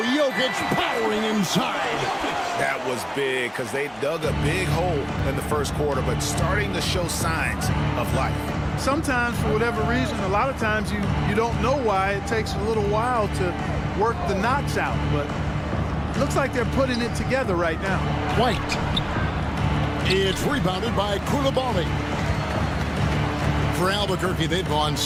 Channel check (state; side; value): identical; both; correlation 1.00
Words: Oh, Jokic powering inside. That was big because they dug a big hole in the first quarter, but starting to show signs of life. Sometimes, for whatever reason, a lot of times you don't know why. It takes a little while to work the knots out, but it looks like they're putting it together right now. White. It's rebounded by Koulibaly. For Albuquerque, they've gone